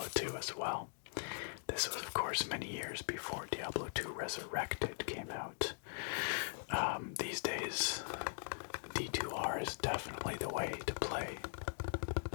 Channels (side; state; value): right; silent; digital silence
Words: 2 as well. This was, of course, many years before Diablo 2 Resurrected came out. These days, D2R is definitely the way to play